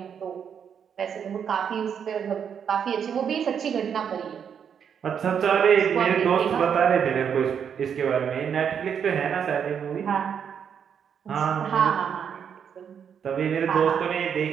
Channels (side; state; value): left; quieter; 7.7 dB